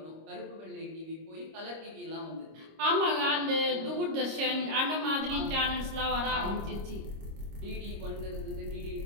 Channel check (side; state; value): left; late; 26 ms